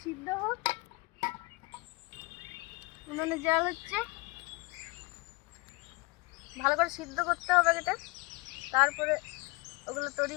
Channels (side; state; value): right; quieter; 25.1 dB